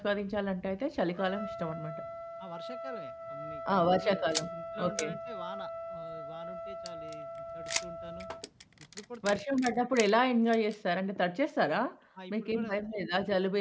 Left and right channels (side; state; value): both; identical; correlation 1.00